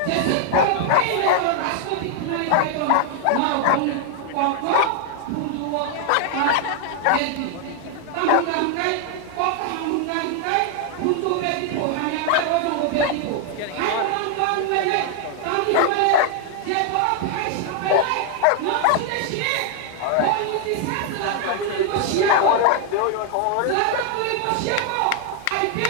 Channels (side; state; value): both; different; correlation 0.00